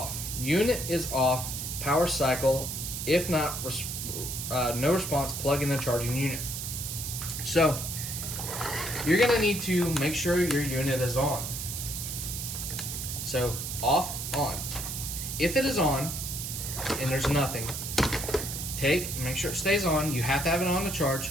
Unit is off. Power cycle. If not, no response, plug in the charging unit. So you're going to need to make sure your unit is on. So off, on. If it is on and there's nothing, make sure it stays on. You have to have it on to charge.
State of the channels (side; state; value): right; noise; hiss, 5 dB below the sound